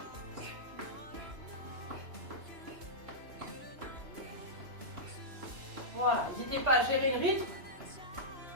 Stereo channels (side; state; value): left; late; 2.9 ms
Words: Voilà, n'hésitez pas à gérer le rythme.